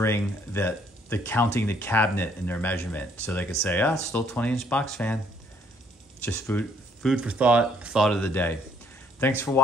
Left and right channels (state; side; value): normal; both; correlation 0.66